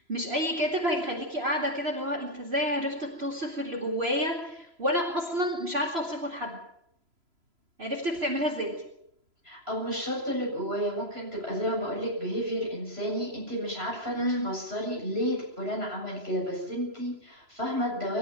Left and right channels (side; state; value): left; late; 3.0 ms